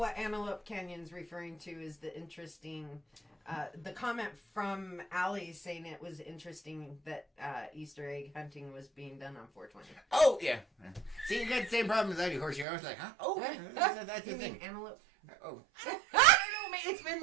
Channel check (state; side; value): drops out; left; at 12.7 s